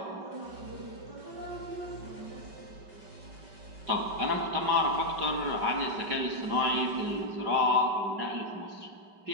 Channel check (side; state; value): left; late; 5.3 ms